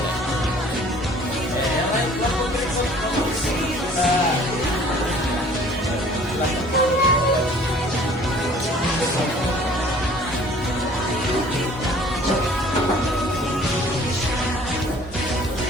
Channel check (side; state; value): both; normal; correlation 0.52